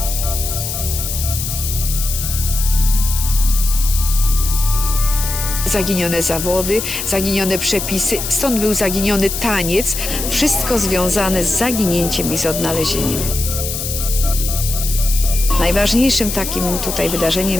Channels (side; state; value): left; noise; hiss, 5 dB below the sound